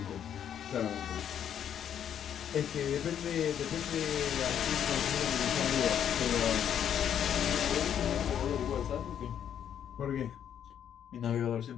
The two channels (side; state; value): right; quieter; 9.3 dB